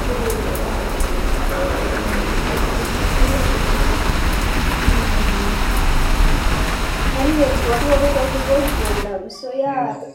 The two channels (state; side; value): identical; both; correlation 1.00